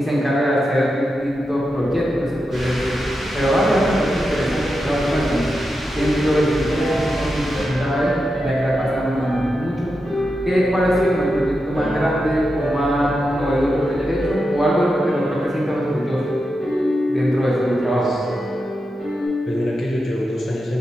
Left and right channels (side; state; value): both; normal; correlation 0.88